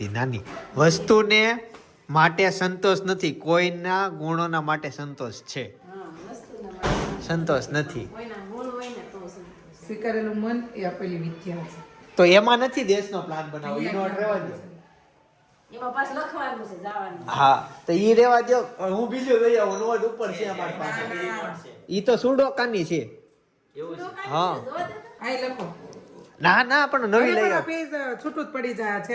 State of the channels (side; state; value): both; identical; correlation 1.00